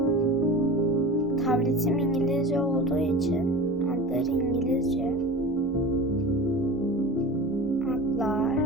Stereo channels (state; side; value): normal; both; correlation 0.34